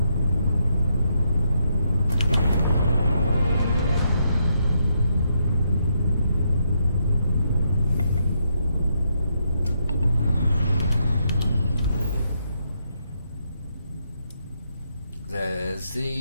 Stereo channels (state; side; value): inverted; both; correlation -0.78